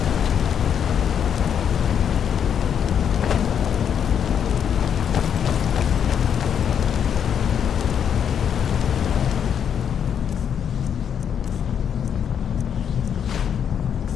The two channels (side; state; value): right; quieter; 8.2 dB